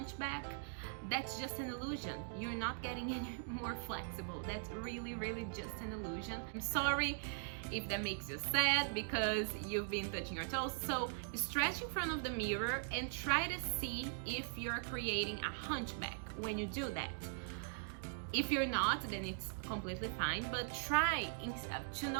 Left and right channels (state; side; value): silent; left; digital silence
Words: That's just an illusion. You're not getting any more flexible. That's really, really just an illusion. I'm sorry if that makes you sad because you've been touching your toes. So stretch in front of the mirror and try to see if you're creating a hunchback when you do that. If you're not, then it's completely fine, but try to